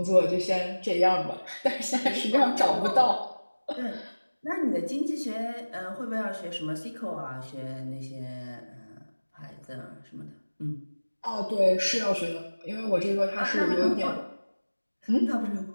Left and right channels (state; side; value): inverted; both; correlation -1.00